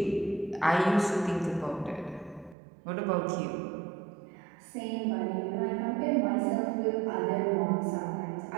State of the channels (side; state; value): left; drops out; at 2.6 s